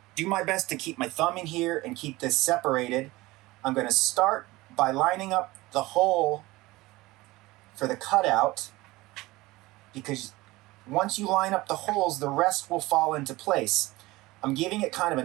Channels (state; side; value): quieter; left; 20.0 dB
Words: do my best to keep my thumb in here and keep this separated. I'm going to start by lining up the hole for the cutout, because once you line up the holes, the rest will fall into place. I'm giving it kind of